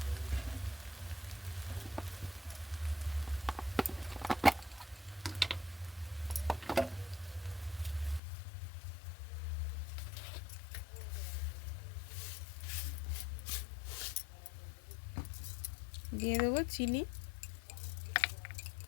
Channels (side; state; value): right; drops out; at 8.2 s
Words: দিয়ে দেবো চিনি।